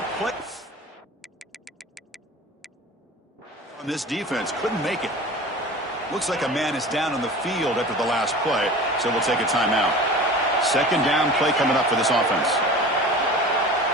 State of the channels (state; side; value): normal; both; correlation 0.37